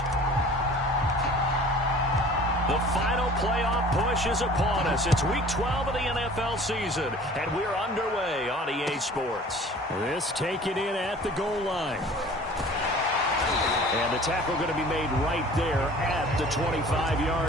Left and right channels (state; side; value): normal; both; correlation 0.47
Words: The final playoff push is upon us. It's Week 12 of the NFL season, and we're underway on EA Sports. This taken in at the goal line. And the tackle going to be made right there at the